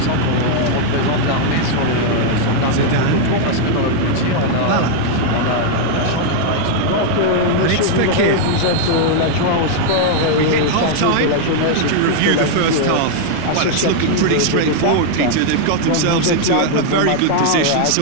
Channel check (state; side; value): different; both; correlation 0.00